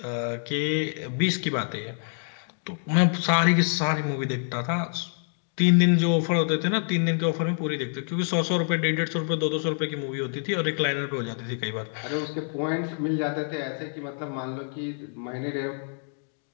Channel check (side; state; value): right; silent; 60 dB below the other